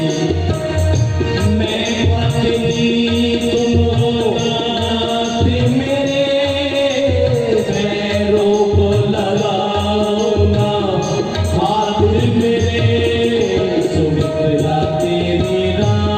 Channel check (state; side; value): identical; both; correlation 1.00